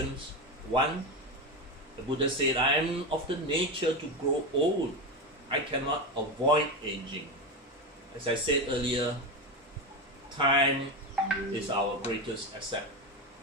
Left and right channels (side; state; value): both; normal; correlation 0.16